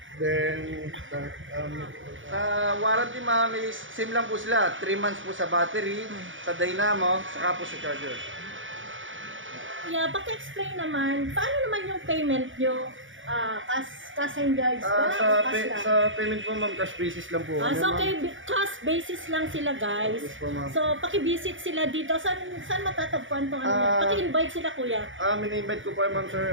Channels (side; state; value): left; late; 0.57 ms